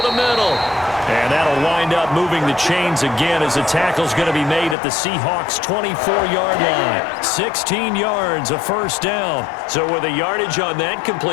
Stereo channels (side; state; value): right; drops out; at 4.8 s